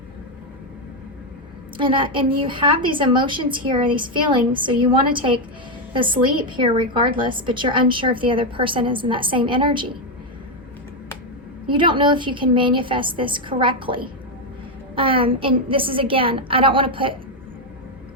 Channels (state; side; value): normal; both; correlation 0.05